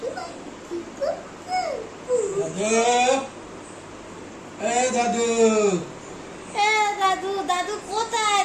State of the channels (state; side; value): identical; both; correlation 1.00